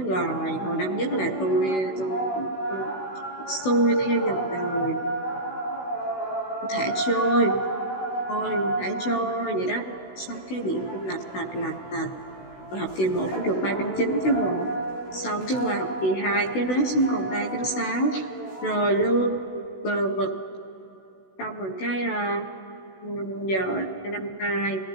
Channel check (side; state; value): right; late; 16 ms